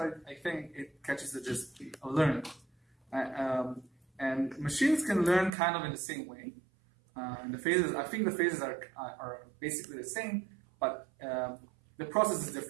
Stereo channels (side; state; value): left; drops out; at 5.5 s